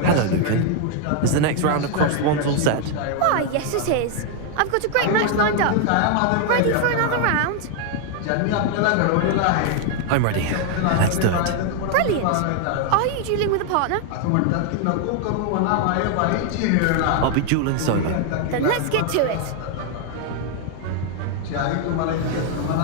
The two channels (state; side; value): different; both; correlation 0.00